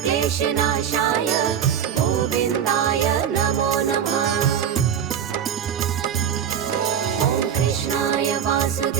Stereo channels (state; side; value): quieter; left; 8.6 dB